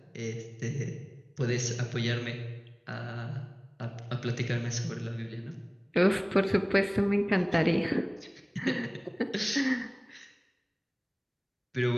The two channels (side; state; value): both; identical; correlation 1.00